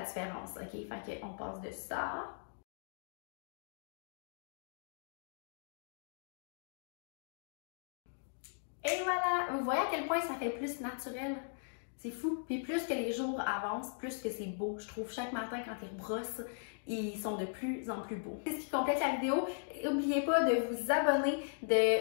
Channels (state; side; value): silent; right; digital silence